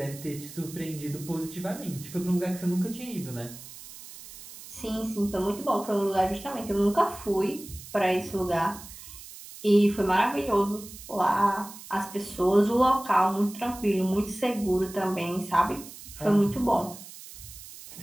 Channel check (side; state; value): right; noise; hiss, 15 dB below the sound